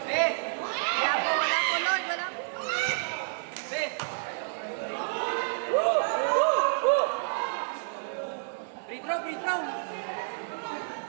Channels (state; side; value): silent; left; 58 dB below the other